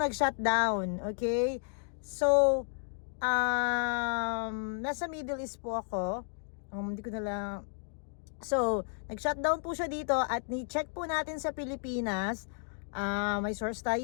Okay? So, nasa Middle East po ako. Hindi ko na lang. So, nag-shutdown po siya dito at ni-check po natin sa Pilipinas. May source tayo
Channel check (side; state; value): right; silent; digital silence